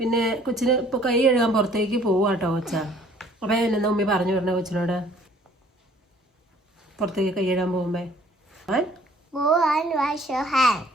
കൊച്ചിന് ഇപ്പോൾ കൈ കഴുകാൻ പുറത്തേക്ക് പോവാട്ടോ കൊച്ച. അപ്പം എന്നാ ഉമ്മി പറഞ്ഞു വിടണേ കൊച്ചിനോട് പുറത്തേക്ക് കൈ കഴുകാൻ പോകുമ്പോ?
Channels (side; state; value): both; normal; correlation 0.57